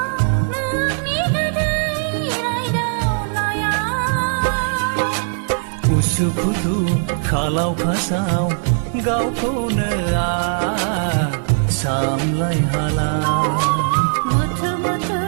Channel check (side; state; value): left; silent; 66 dB below the other